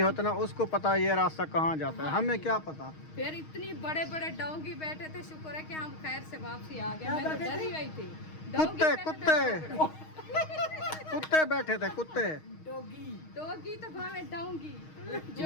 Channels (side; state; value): right; late; 6.4 ms